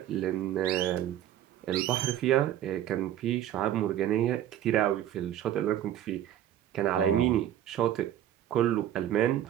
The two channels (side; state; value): left; quieter; 11.6 dB